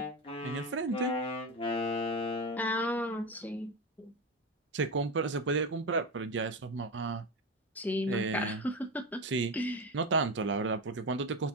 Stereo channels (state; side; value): normal; both; correlation 0.19